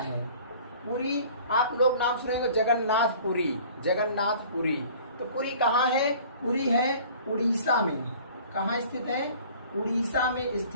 पुरी, आप लोग नाम सुनेंगे जगन्नाथपुरी, जगन्नाथपुरी। तो पुरी कहाँ है? पुरी है उड़ीसा में। कहाँ स्थित है? उड़ीसा में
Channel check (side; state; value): both; inverted; correlation -0.48